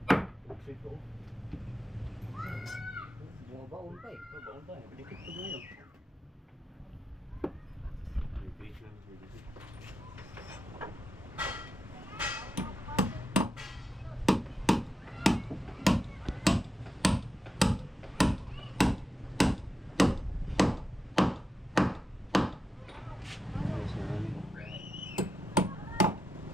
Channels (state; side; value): normal; both; correlation 0.88